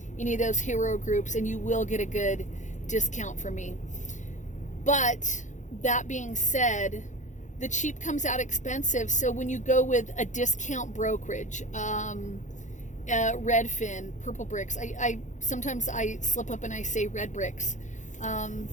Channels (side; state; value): right; late; 0.35 ms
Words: any of those hero groups, and you will get a good discount from me. But that being said, the cheap comes out expensive. So when you go with a discount brokerage, Redfin, Purple Bricks, I sometimes I slip up and I say Red Bricks.